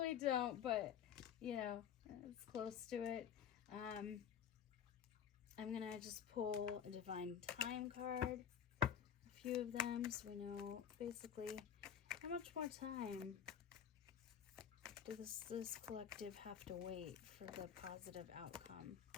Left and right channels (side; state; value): right; quieter; 8.6 dB